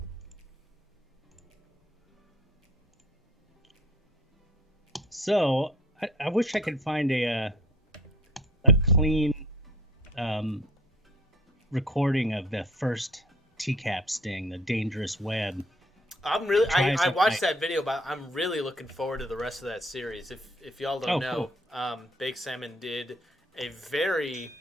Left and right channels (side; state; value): both; normal; correlation 0.52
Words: So I wish I could find a clean recording of the first TCAP sting, the dangerous web. I watched that video, but I'm really looking forward to the rest of that series. If y'all don't know, cool. Big Salmon did a very.